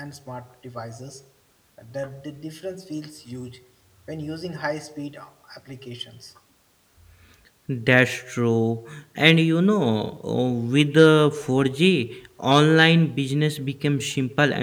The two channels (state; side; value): identical; both; correlation 1.00